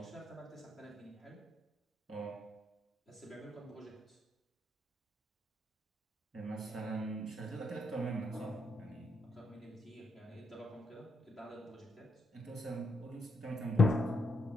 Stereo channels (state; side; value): normal; both; correlation 0.78